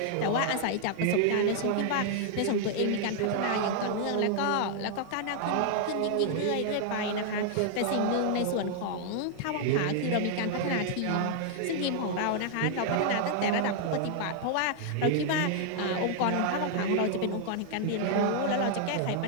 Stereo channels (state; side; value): different; both; correlation -0.01